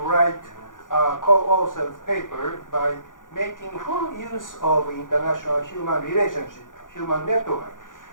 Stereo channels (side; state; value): right; late; 0.88 ms